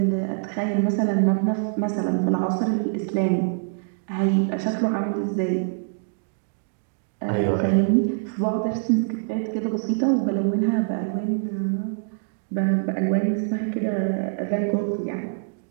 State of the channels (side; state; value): left; silent; digital silence